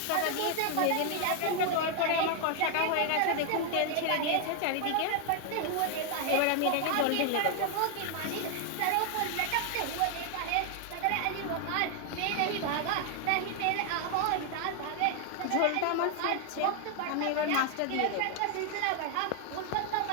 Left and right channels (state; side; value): different; both; correlation 0.00